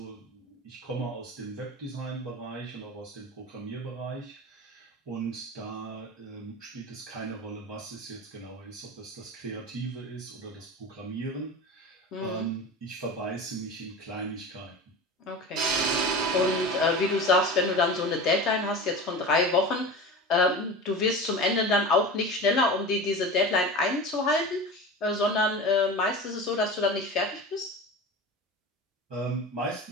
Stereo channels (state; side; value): normal; both; correlation 0.30